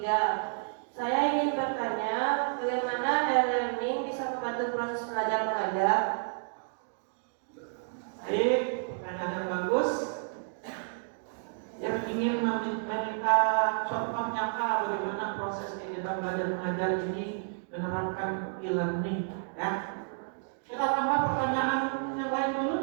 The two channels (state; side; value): silent; left; digital silence